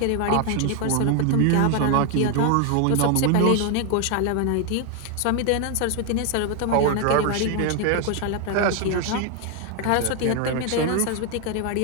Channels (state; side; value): different; both; correlation 0.01